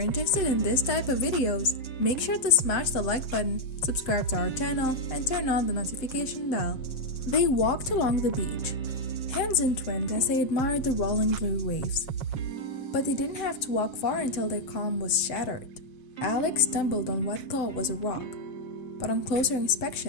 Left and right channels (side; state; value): right; late; 7.8 ms